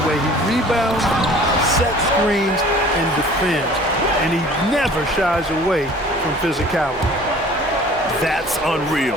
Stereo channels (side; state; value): both; normal; correlation 0.48